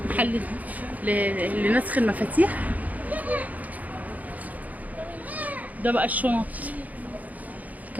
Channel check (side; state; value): left; late; 0.077 ms